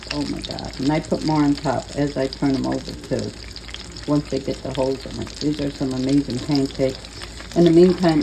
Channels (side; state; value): both; identical; correlation 1.00